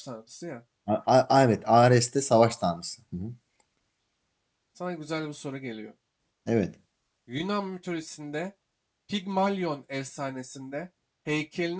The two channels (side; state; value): both; identical; correlation 1.00